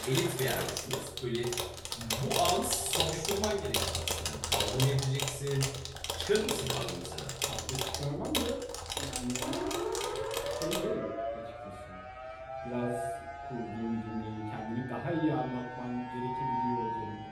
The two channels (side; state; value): both; identical; correlation 1.00